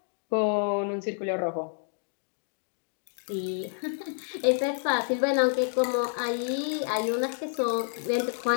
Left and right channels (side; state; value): right; silent; 59 dB below the other